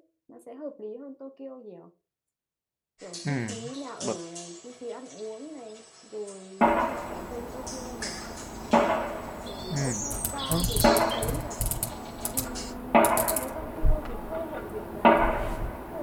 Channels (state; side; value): identical; both; correlation 1.00